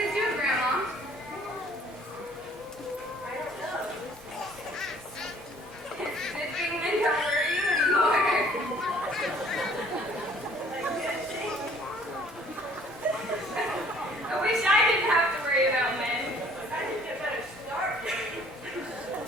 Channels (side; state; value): both; normal; correlation 0.56